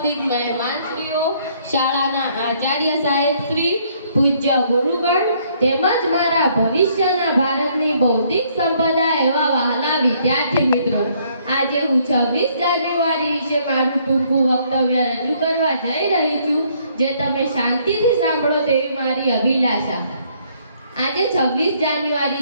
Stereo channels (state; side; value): inverted; both; correlation -0.66